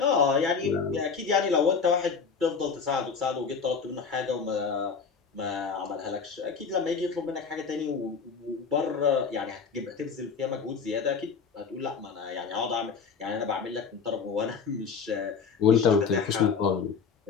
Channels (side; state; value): right; quieter; 5.7 dB